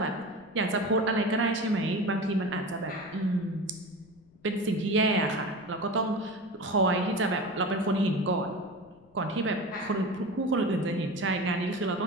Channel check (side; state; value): left; noise; rumble, 29 dB below the sound